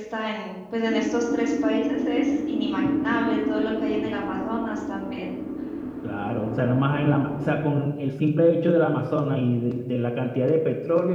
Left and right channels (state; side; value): identical; both; correlation 1.00